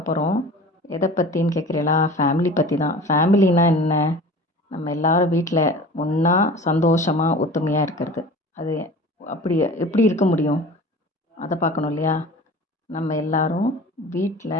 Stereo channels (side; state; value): both; normal; correlation 0.39